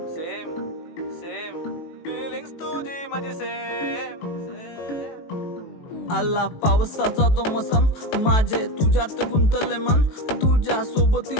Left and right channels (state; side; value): late; right; 18 ms